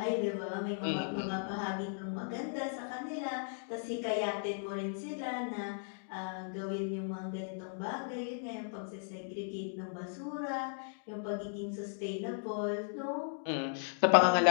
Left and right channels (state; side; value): silent; right; digital silence